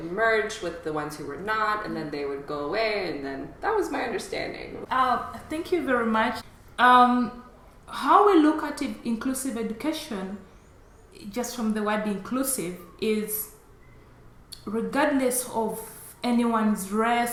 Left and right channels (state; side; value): identical; both; correlation 1.00